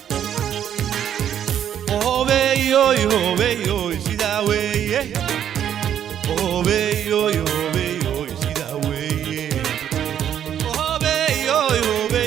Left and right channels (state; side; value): quieter; left; 9.8 dB